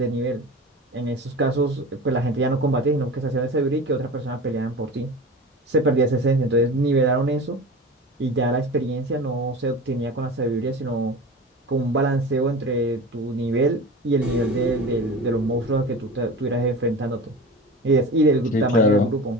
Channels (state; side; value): normal; both; correlation 0.33